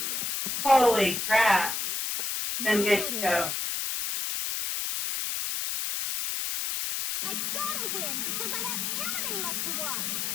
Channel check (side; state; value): left; noise; hiss, 1 dB below the sound